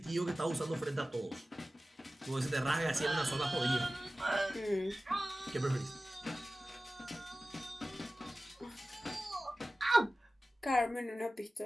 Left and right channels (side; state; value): both; normal; correlation 0.96